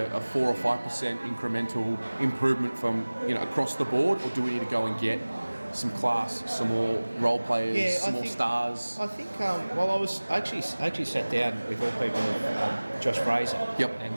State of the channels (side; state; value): both; inverted; correlation -1.00